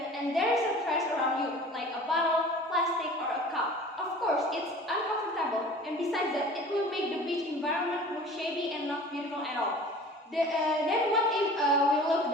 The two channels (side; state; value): both; normal; correlation 0.43